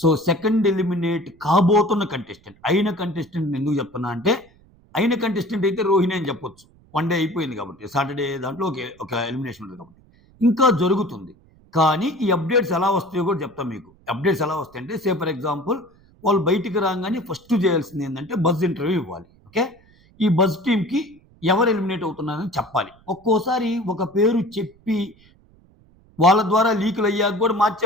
సెకండ్ ఎలిమినేట్ కాబోతున్న కంటెస్టెంట్, అయిన కంటెస్టెంట్ ఎందుకు చెప్తున్నా అంటే, అయిన కంటెస్టెంట్ అయితే రోహిణి అని చెప్పొచ్చు. వన్ డే అయిపోయింది కాబట్టి, సాటర్డే దాంట్లో ఒక ఎలిమినేషన్ ఉంటుంది కాబట్టి. ఇంకా జరుగుతుంది. కానీ ఈ అప్డేట్స్ ఎలా వస్తాయో కూడా చెప్తాను మీకు. అప్డేట్స్ ఎలా వస్తాయంటే, ఫర్ ఎగ్జాంపుల్ వాళ్ళు బయటికి రాగానే ఫస్ట్ చేయాల్సింది ఏంటంటే బజ్ ఇంటర్వ్యూ ఇవ్వాలి. ఓకే. ఈ బజ్ టీమ్‌కి ఎవరు ఎలిమినేట్ అవుతున్నారని చెప్పాలి. ఒక్కోసారి ఒక పేరు చెప్పి వాళ్ళ ద్వారా లీకులయ్యాక గూడా మార్చే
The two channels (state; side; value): noise; right; rumble, 29 dB below the sound